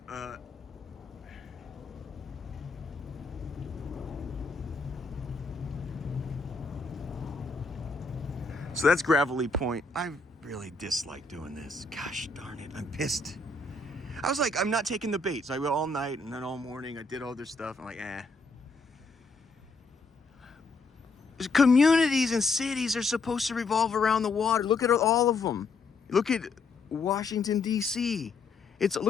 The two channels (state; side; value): quieter; right; 3.8 dB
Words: So that's Gravelly Point. I really dislike doing this. Gosh darn it, I'm pissed. I was like, I'm not taking the bait. So I went all night and then all morning. I did all this stuff. I'm like, Communities and cities are supposed to revolve around the water. Look at all of them. Look at Washington, D.C.